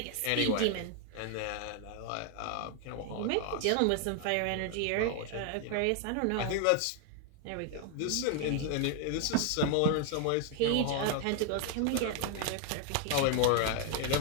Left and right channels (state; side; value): different; both; correlation 0.01